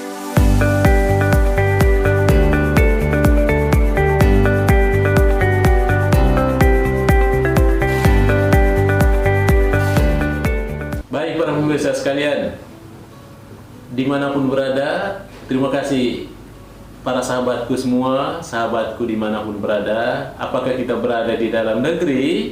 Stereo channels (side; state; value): both; identical; correlation 1.00